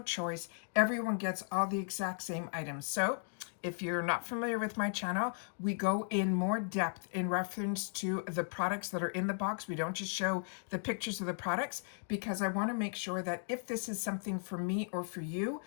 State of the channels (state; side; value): silent; right; digital silence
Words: choice. Everyone gets all the exact same items. So if you're not familiar with my channel, we go in more depth in reference to the products that are in the box. We don't just show the pictures of the products because I want to make sure that if this is something for me or for you,